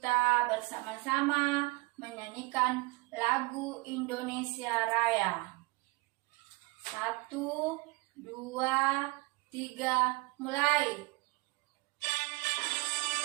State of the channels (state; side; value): quieter; left; 24.5 dB